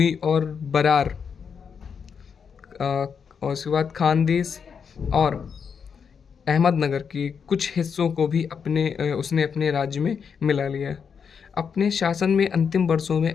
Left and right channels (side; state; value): right; quieter; 6.5 dB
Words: और बरार और उसके बाद खानदेश और अहमदनगर के कुछ हिस्सों को भी उसने अपने राज्य में मिला लिया। अपने शासन में अंतिम वर्षों में